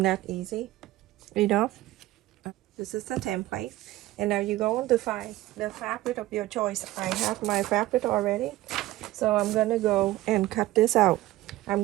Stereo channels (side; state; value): left; quieter; 16.6 dB